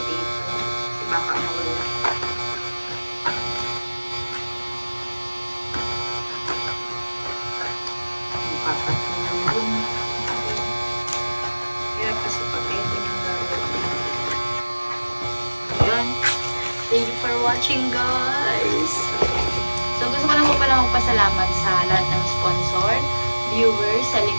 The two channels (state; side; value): inverted; both; correlation -1.00